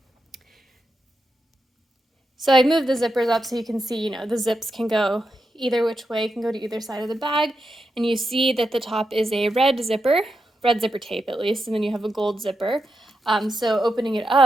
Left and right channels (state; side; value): normal; both; correlation 0.86